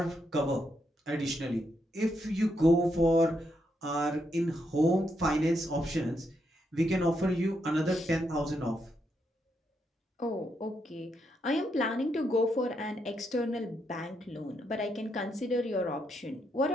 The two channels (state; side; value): normal; both; correlation 0.80